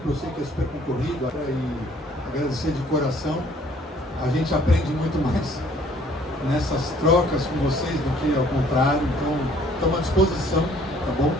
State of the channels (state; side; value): normal; both; correlation 0.58